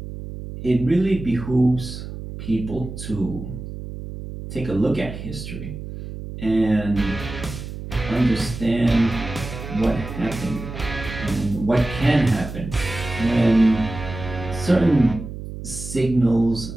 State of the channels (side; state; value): right; noise; hum, 10 dB below the sound